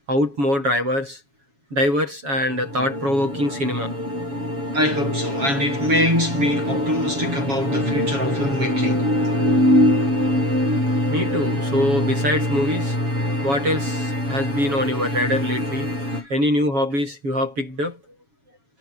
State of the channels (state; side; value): late; left; 7.2 ms